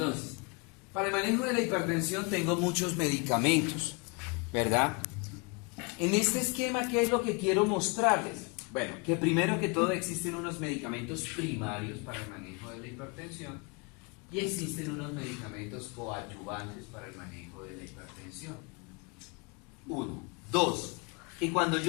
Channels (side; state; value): right; quieter; 31.3 dB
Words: para el manejo de la hipertensión tengo muchos medicamentos, ¿verdad? En este esquema, ¿qué es lo que quiero mostrarles? Bueno, que primero que todo existen unos medicamentos primarios para el manejo de la hipertensión y existen unos medicamentos coadyuvantes para el manejo de la hipertensión. Uno. Dos, que cuando